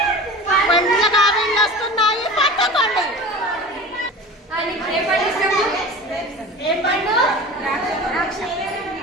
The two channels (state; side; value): normal; both; correlation 0.36